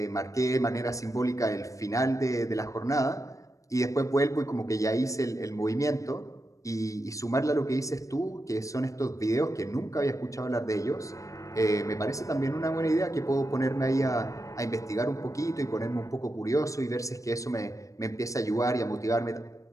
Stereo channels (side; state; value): right; late; 0.16 ms